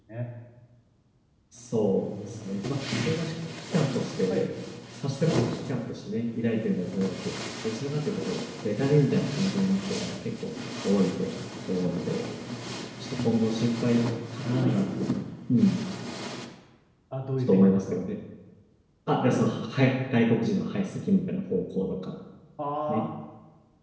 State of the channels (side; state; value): both; identical; correlation 1.00